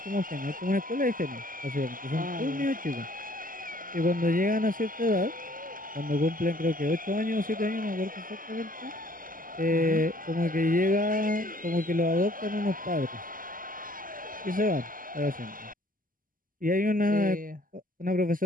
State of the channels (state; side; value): late; left; 0.41 ms